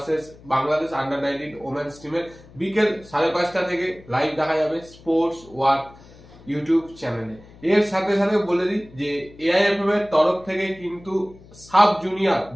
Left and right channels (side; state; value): left; noise; hum, 23 dB below the sound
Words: Bangladesh under 19 women's টিমের। বিকেল 5:30 থেকে লাইভ দেখা যাবে স্পোর্টস ওয়ার্ক ইউটিউব চ্যানেলে। এর সাথে সাথে বলে দিই যে এআইএফএফ এর তরফ থেকে কিন্তু সাব জুনিয়র